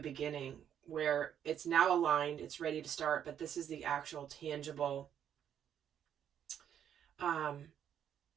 where it's now aligned, it's ready to start, but this is the actual tangible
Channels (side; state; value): left; quieter; 9.4 dB